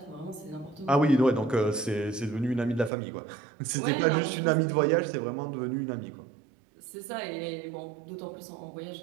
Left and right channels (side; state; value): left; drops out; at 2.9 s